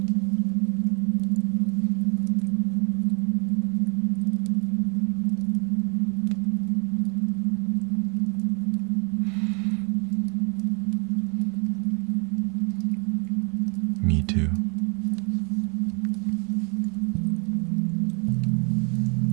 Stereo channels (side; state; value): left; quieter; 35.8 dB